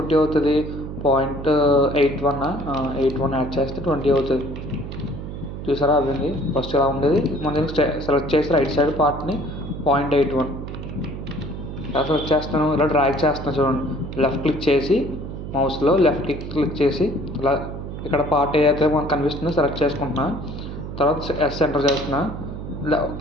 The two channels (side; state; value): right; noise; hum, 8 dB below the sound